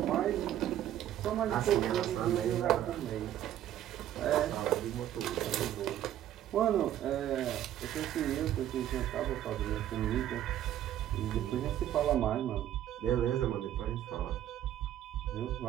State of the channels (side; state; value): left; quieter; 11.9 dB